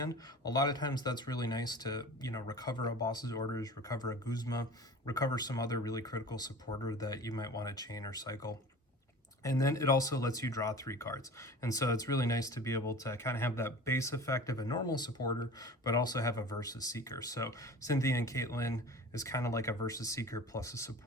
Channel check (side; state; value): both; normal; correlation 0.39